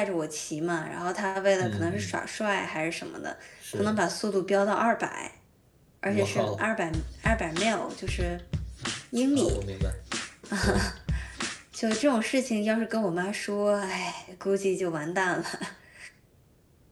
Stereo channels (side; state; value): both; identical; correlation 1.00